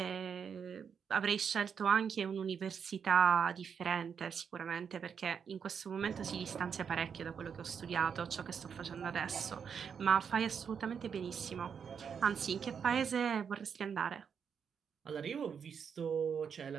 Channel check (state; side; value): quieter; left; 7.0 dB